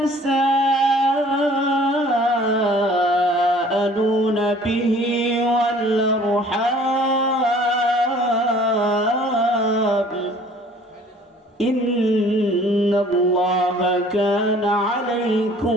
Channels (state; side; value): normal; both; correlation 0.52